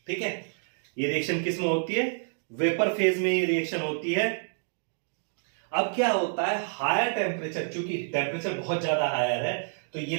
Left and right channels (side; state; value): left; silent; digital silence